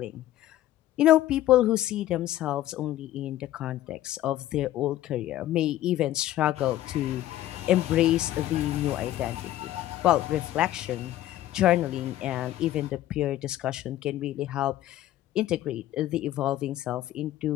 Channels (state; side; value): quieter; right; 13.9 dB